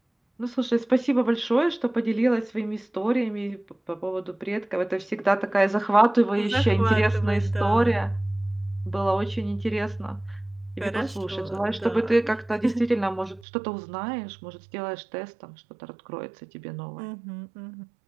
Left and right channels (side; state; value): left; drops out; at 13.5 s